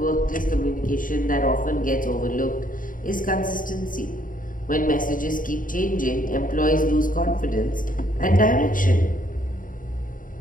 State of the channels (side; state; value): right; late; 0.39 ms